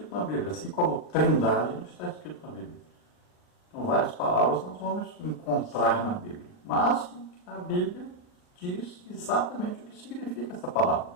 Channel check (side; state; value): right; late; 39 ms